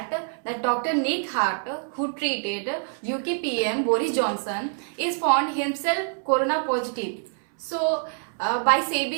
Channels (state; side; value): silent; left; 61 dB below the other